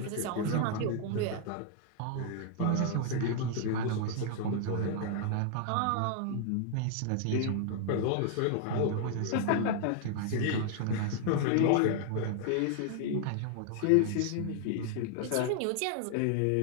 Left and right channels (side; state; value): both; different; correlation 0.00